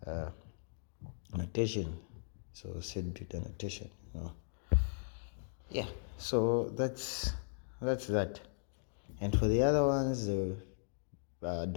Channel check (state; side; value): silent; right; digital silence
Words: notation. So set bit annotation. Yeah, so that's that. And for the other ones, the